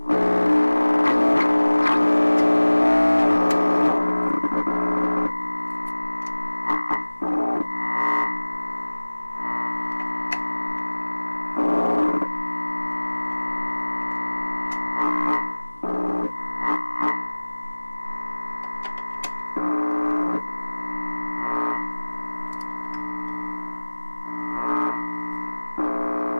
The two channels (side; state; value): both; inverted; correlation -1.00